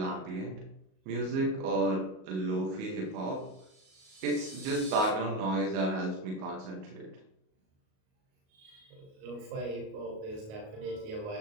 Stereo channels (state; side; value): late; left; 37 ms